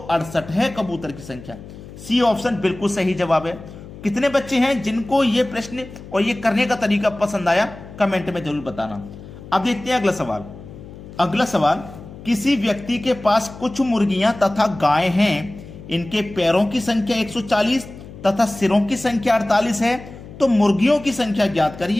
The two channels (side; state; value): left; noise; hum, 16 dB below the sound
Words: 68 है कबूतर की संख्या। सी ऑप्शन बिल्कुल सही जवाब है। कितने बच्चे हैं जिनको ये प्रश्न और ये करने का तरीका पसंद आया, कमेंट में जरूर बताना। अब देखते हैं अगला सवाल। अगला सवाल, किसी व्यक्ति के पास कुछ मुर्गियां तथा गाय हैं। इनके पैरों की संख्या 140 तथा सिरों की संख्या 48 है, तो मुर्गियों की संख्या ज्ञात